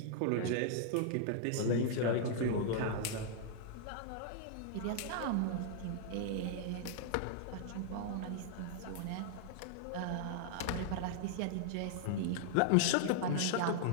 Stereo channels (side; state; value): both; different; correlation -0.01